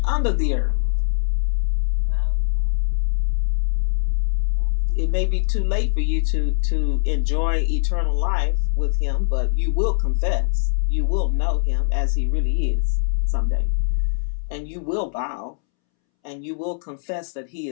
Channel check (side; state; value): right; silent; 64 dB below the other